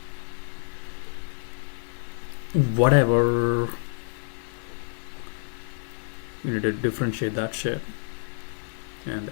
Whatever. You need to differentiate that shit. And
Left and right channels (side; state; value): right; silent; digital silence